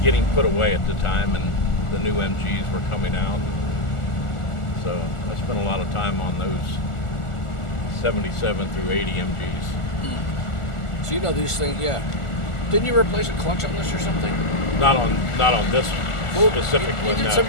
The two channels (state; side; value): late; right; 1.4 ms